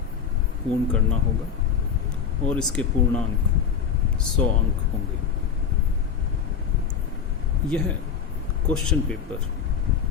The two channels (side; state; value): right; quieter; 7.2 dB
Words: पूर्ण करना होगा और इसके पूर्णांक 100 अंक होंगे। यह क्वेश्चन पेपर